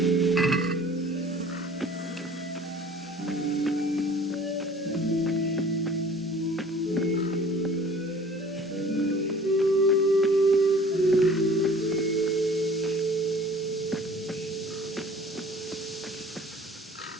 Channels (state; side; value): normal; both; correlation 0.49